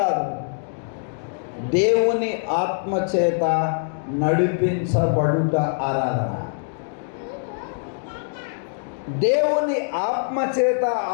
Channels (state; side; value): silent; right; digital silence